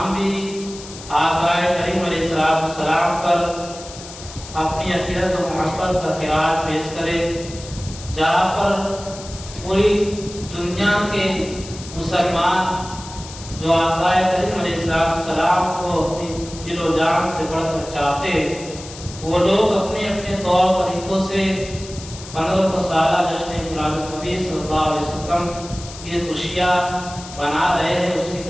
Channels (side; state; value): left; noise; hiss, 15 dB below the sound